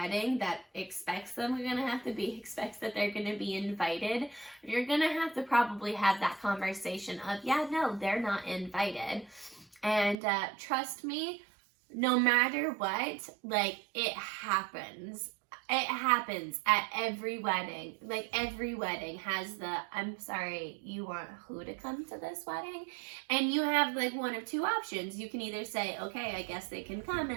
that expects that they're going to be invited, you're going to have to probably have that conversation of, yeah, no, they're not invited. And trust me, no matter what, it happens. It happens at every wedding. Like, every wedding has the, I'm sorry, you want who to come to this wedding? And you have like one of two options. You can either say, okay, I guess they can come,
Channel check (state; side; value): drops out; left; at 10.2 s